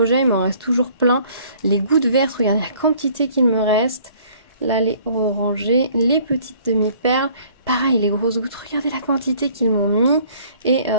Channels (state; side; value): inverted; both; correlation -0.56